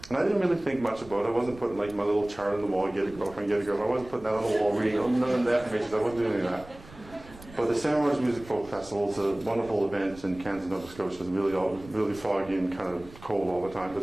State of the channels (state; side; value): noise; right; rumble, 20 dB below the sound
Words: And I didn't really think much about it. I wasn't putting like my little chart on the wall, get a girlfriend, get a girlfriend. I wasn't putting that on the wall, reading none of the affirmations. I wasn't doing any of that. But the Stan Rogers Music Folk Festival is a wonderful event in Kansas, Nova Scotia. It's really foggy and kind of cold all the time, but